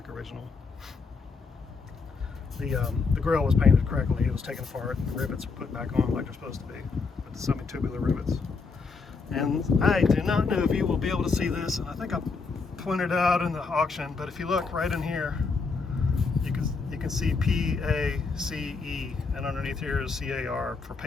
original. The grill was painted correctly. It was taken apart. The rivets were put back on like they're supposed to be, with the semi-tubular rivets. And I do not know if you will be able to see this, and I think I pointed out in the auction, but if you look right in here, you can see PACE, and underneath here is CAR for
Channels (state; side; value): quieter; right; 4.6 dB